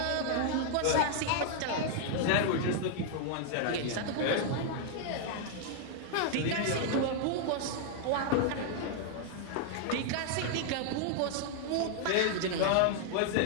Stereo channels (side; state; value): both; different; correlation 0.00